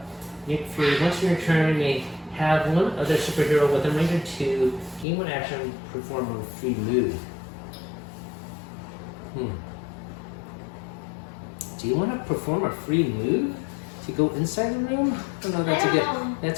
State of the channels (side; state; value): right; drops out; at 5.1 s